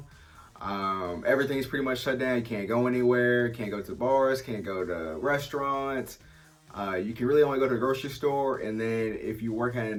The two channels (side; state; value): both; identical; correlation 1.00